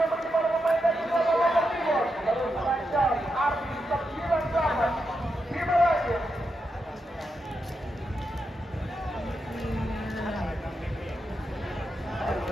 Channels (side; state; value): both; normal; correlation 0.85